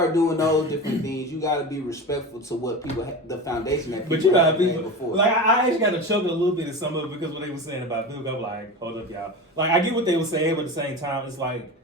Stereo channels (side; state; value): both; normal; correlation 0.28